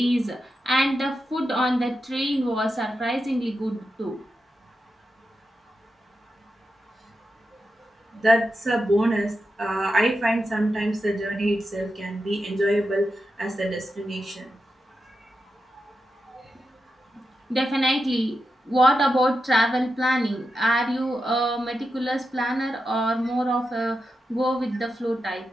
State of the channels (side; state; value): both; normal; correlation 0.89